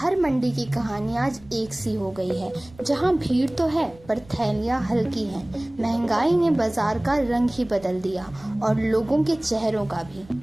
मंडी की कहानी आज एक सी हो गई है। जहां भीड़ तो है पर थैलियां हल्की हैं। महंगाई ने बाजार का रंग ही बदल दिया और लोगों के चेहरों का भी।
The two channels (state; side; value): noise; right; rumble, 23 dB below the sound